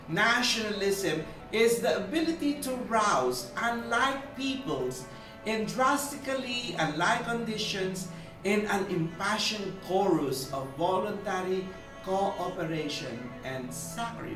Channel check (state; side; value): identical; both; correlation 1.00